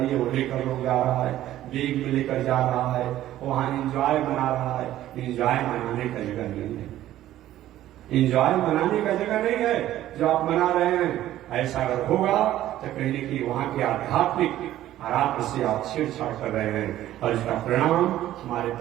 वो लेकर लोग जा रहा है, बैग में लेकर जा रहा है, वहां इंजॉय बना रहा है। इंजॉय मनाने का जगह नहीं है, इंजॉय मनाने का जगह नहीं है जो आप मना रहे हैं। ऐसा अगर होगा तो कहीं न कहीं वहां के आध्यात्मिक आराध्य से आप छेड़छाड़ कर रहे हैं, और इसका परिणाम हमारे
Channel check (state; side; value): quieter; left; 13.5 dB